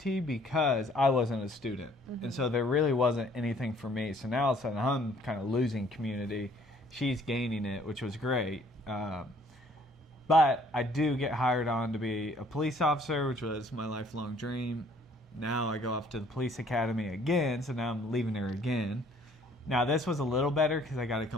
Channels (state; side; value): normal; both; correlation 0.60